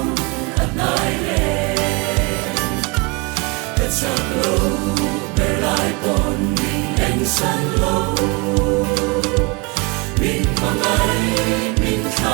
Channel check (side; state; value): left; quieter; 29.1 dB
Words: at nai le at sang lo ber lai pom min en san lo min mang ai min